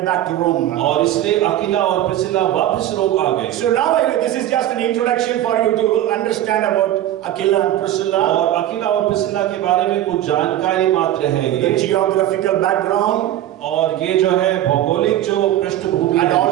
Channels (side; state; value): left; quieter; 12.8 dB